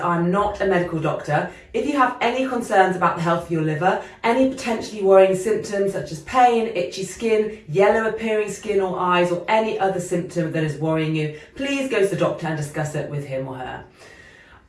I'm not a medical doctor. If you have any concerns about the health of your liver, any potentially worrying symptoms such as pain, itchy skin, yellow appearing skin or eyes, or any other symptom that is worrying you, please go to the doctor and discuss it with him or her.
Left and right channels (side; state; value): both; identical; correlation 1.00